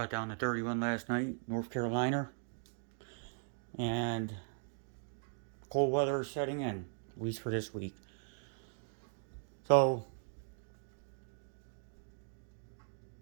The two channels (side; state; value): left; silent; digital silence